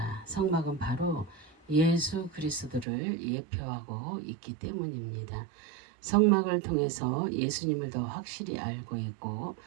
성막은 바로 예수 그리스도를 예표하고 있기 때문입니다. 성막을 통해서 예수님을 더 확실히 알고 있고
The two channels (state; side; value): drops out; left; at 2.9 s